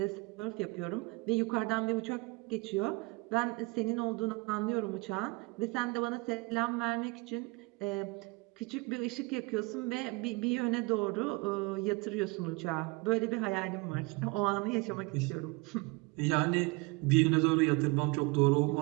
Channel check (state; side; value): quieter; left; 26.3 dB